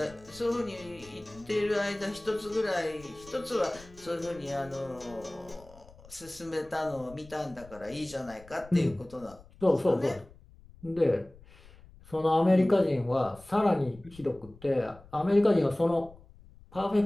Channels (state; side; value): noise; left; rumble, 22 dB below the sound